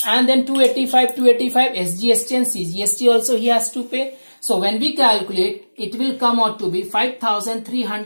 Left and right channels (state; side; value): inverted; both; correlation -1.00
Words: and then 285 SGST and CGST also he has to pay. So when we calculate, it will come out to be